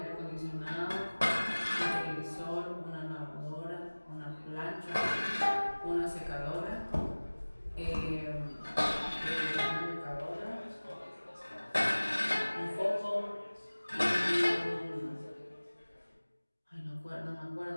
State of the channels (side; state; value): both; inverted; correlation -1.00